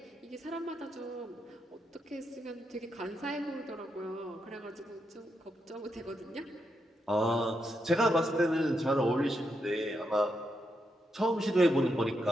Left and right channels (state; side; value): normal; both; correlation 0.82